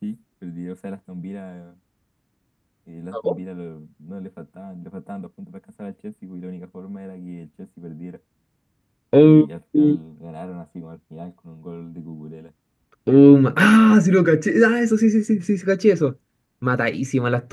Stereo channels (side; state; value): both; identical; correlation 1.00